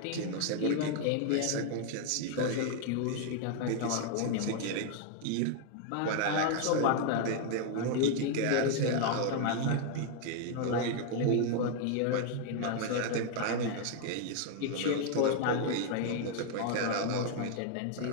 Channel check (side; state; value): both; different; correlation 0.00